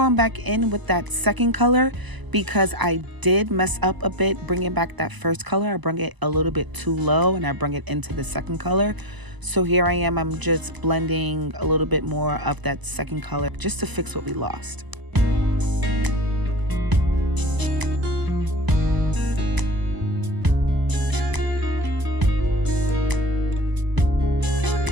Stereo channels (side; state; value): left; late; 1.0 ms